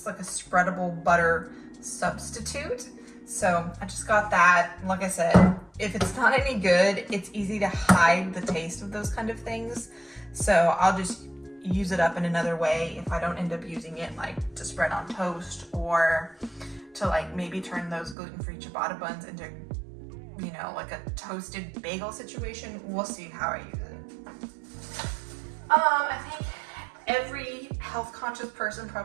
like a spreadable butter substitute. So I just got that. Like I said, if it's not any good, it's easy to hide the taste of those kind of things. So I'll just use it up in another way if I don't end up using it like to spread on toast, or to like maybe turn those gluten-free ciabatta buns into, you know, like a toasted bagel situation. We'll see how I use it. I think every health conscious person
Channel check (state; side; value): drops out; left; at 18.2 s